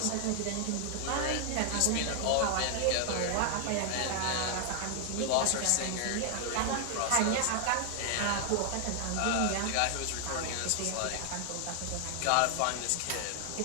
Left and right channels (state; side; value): different; both; correlation 0.00